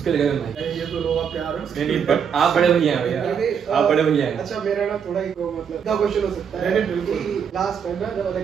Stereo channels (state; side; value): quieter; left; 7.3 dB